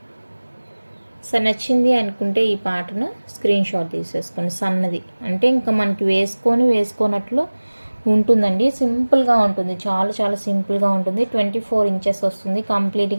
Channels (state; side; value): inverted; both; correlation -1.00